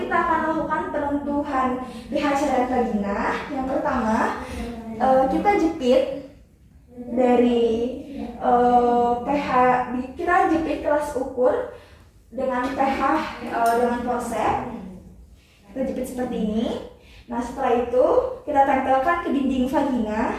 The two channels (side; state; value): both; identical; correlation 1.00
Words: kita akan melakukan penentuan pH cairan vagina. Yang pertama, kita jepit dari pH, kita jepit kelas ukur dengan pH dengan forceps. Kita jepit seperti ini. Nah, setelah itu kita tempelkan ke dinding vagina